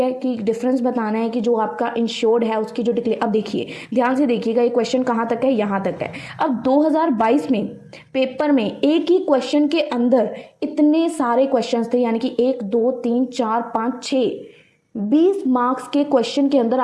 कि डिफरेंस बताना है कि जो आपका इंश्योर्ड है उसकी जो डिक्लेयर। अब देखिए, ध्यान से देखिएगा, ये क्वेश्चन कहाँ तक है, यहाँ तक है। अब 2022 में पेपर में एक ही क्वेश्चन के अंदर इतने सारे क्वेश्चंस थे, यानी कि 1 2 3 4 5 6 20 मार्क्स के क्वेश्चन के अंदर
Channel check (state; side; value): identical; both; correlation 1.00